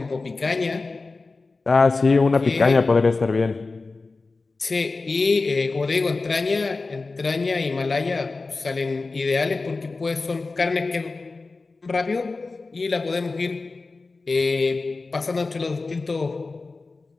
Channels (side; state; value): right; quieter; 3.7 dB